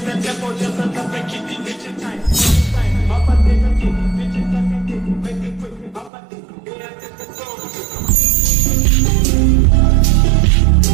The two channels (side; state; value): left; drops out; at 6.1 s